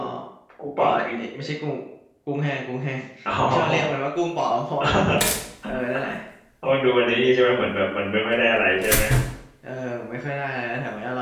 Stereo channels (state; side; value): identical; both; correlation 1.00